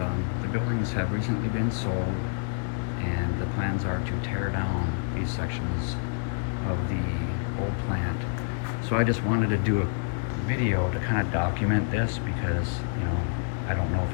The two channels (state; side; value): silent; right; digital silence